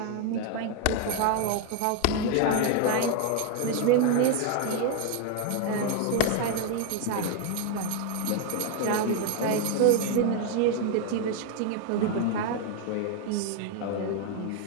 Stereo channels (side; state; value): both; different; correlation 0.01